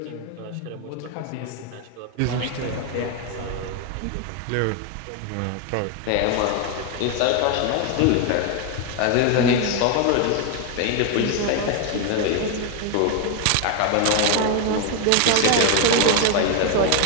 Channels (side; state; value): both; different; correlation 0.01